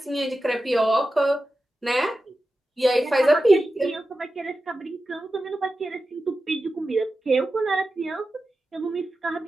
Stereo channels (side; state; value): both; normal; correlation 0.93